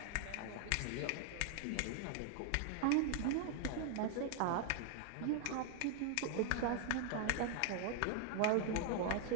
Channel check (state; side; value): different; both; correlation -0.01